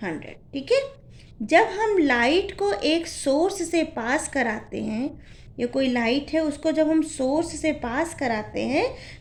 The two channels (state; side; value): identical; both; correlation 1.00